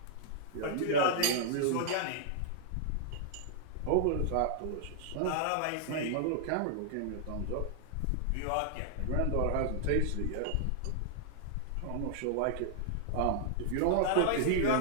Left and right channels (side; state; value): both; different; correlation -0.01